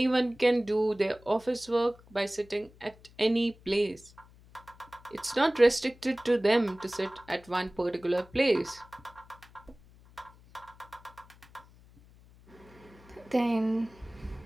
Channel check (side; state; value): left; noise; hum, 25 dB below the sound